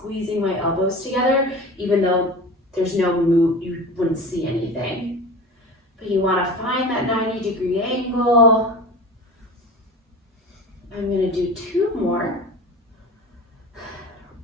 my elbows together, even though there's no move, you wouldn't see anything. But you want to find that 90-degree angle. I'm going to do 2 more.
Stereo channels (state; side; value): normal; both; correlation 0.33